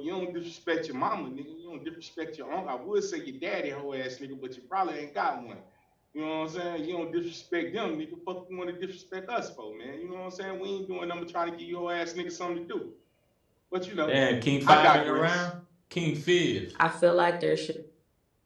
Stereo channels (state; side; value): identical; both; correlation 1.00